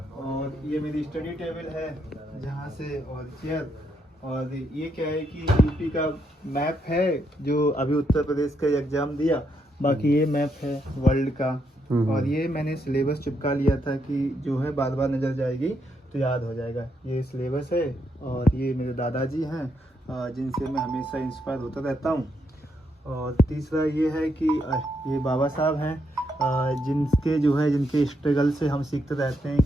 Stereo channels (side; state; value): both; normal; correlation 0.78